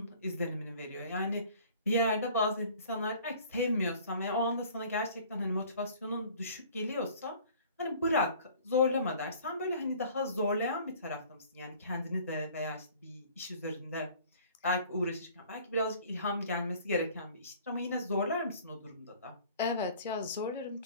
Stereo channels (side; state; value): both; inverted; correlation -0.50